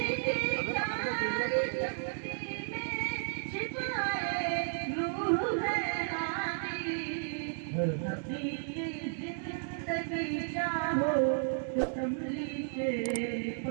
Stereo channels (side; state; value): left; silent; digital silence